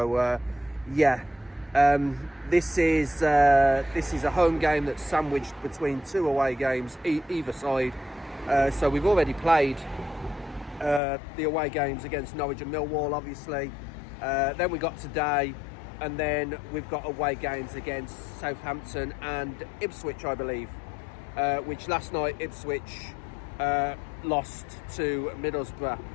yeah, this is a home game that's sandwiched between two away games either side. So we've already played the away games against Norwich and Millwall, obviously. Then we got today, and then we've got away games against Southampton and Ipswich, I believe, which last night Ipswich lost to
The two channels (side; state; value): right; drops out; at 11.0 s